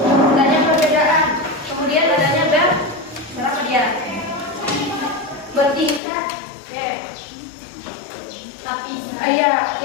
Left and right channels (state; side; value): drops out; right; at 6.0 s